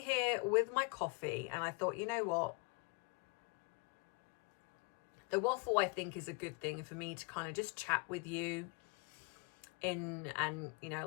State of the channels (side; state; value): right; quieter; 30.6 dB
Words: with my coffee and I thought, you know what? The waffle, I think, is a good thing for me to kind of just chat with you and, you know,